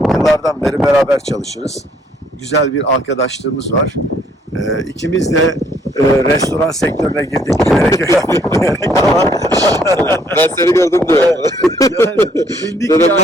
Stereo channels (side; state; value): both; normal; correlation 0.65